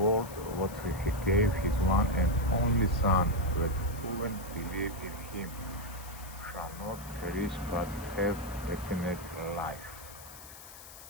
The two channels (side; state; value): left; noise; hiss, 16 dB below the sound